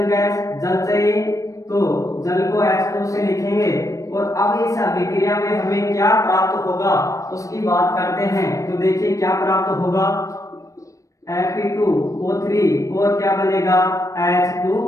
गैस, जल चाहिए, तो जल को H2 से लिखेंगे। और अब इस अभिक्रिया में हमें क्या प्राप्त होगा उसकी बात करते हैं। तो देखिए क्या प्राप्त होगा, Fe2O3 और क्या बनेगा,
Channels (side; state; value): right; late; 0.16 ms